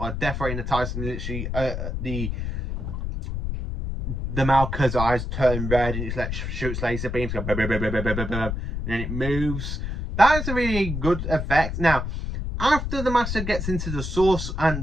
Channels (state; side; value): noise; left; rumble, 4 dB below the sound